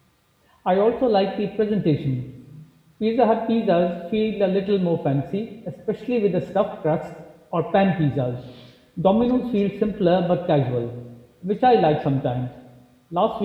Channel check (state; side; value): identical; both; correlation 1.00